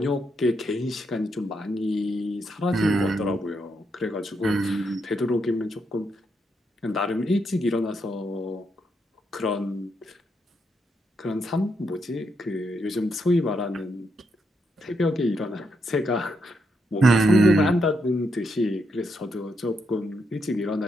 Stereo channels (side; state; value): both; normal; correlation 0.80